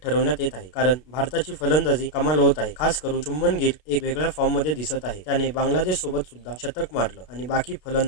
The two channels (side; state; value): right; late; 32 ms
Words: ठरवण्यात येत आहे, कारण भारताची फलंदाजी कमाल होत आहे। खास करून शुभमन गिल एक वेगळ्या फॉर्म मध्ये दिसत आहे। त्याने बांगलादेश सोबत सुद्धा शतक मारलं आणि बाकी